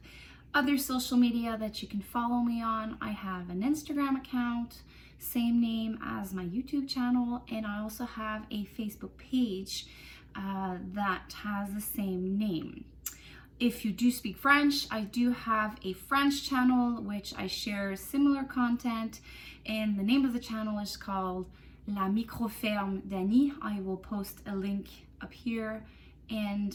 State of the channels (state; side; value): identical; both; correlation 1.00